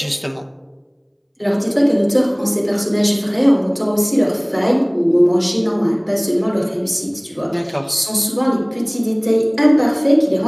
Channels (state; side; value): identical; both; correlation 1.00